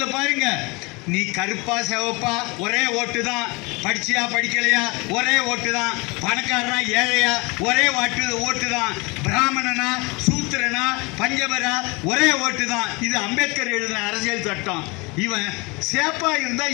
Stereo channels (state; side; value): quieter; right; 26.6 dB